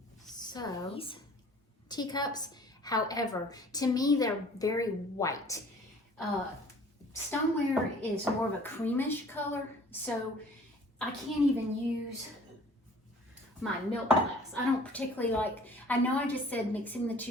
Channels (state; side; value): normal; both; correlation 0.51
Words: So, these teacups, however, to me they're very white. Stoneware is more of a creamish color, so I can't even use my milk glass. I don't particularly like, I know I just said mixing the